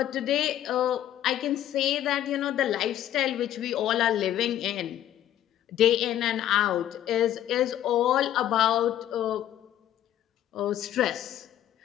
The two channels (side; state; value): right; quieter; 11.7 dB